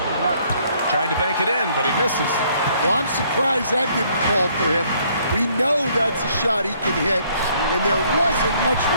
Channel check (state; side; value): inverted; both; correlation -0.65